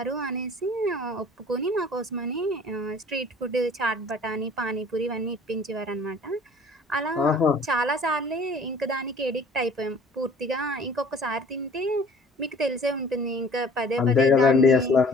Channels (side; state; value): both; normal; correlation 0.50